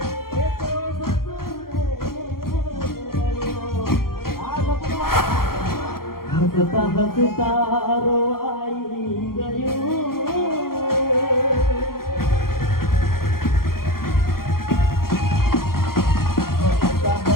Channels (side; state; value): right; late; 0.92 ms